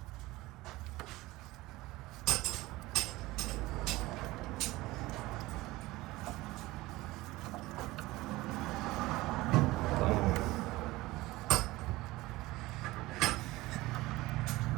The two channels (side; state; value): left; quieter; 19.3 dB